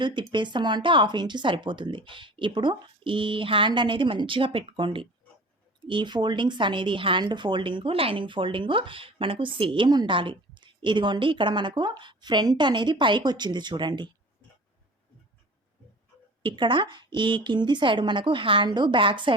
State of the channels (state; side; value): normal; both; correlation 0.41